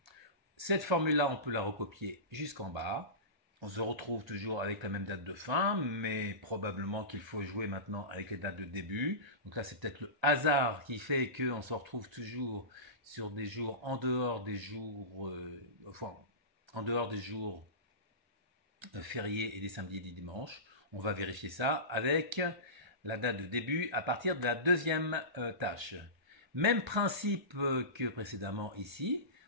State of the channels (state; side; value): late; left; 1.3 ms